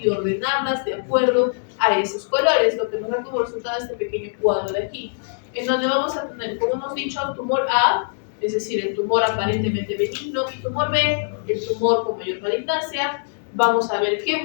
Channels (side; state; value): right; silent; digital silence